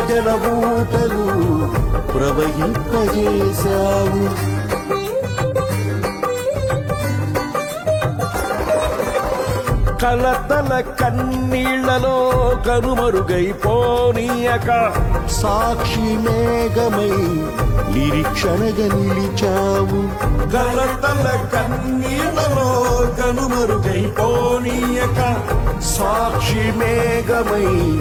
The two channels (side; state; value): both; identical; correlation 1.00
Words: బూటలు ప్రవహింపజేశావు, కలతల కన్నీళ్లలో కనుమరుగైపోనీయక సాక్షి మేఘమై నిరీక్షణగా నిలిచావు, కలతల కన్నీళ్లలో కనుమరుగైపోనీయక సాక్షి మేఘమై